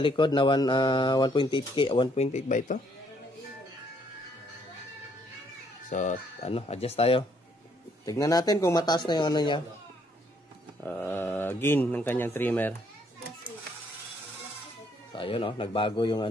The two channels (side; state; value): both; normal; correlation 0.68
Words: na 1.8K. 1.8 ba ito? So ano, adjust tayo. Tignan natin kung mataas na yung ano niya. Gain ng kanyang trimmer. So ayun o, nagbago yung